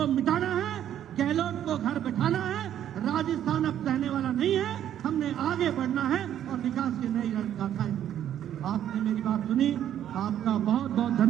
मिटाना है। गहलोत को घर बैठाना है। राजस्थान अब सहने वाला नहीं है, हमने आगे बढ़ना है और विकास की नई रणगाथाएं। आपने मेरी बात सुनी, आपका बहुत बहुत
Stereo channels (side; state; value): left; quieter; 10.7 dB